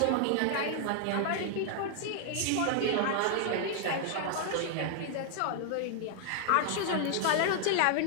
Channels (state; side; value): different; both; correlation 0.00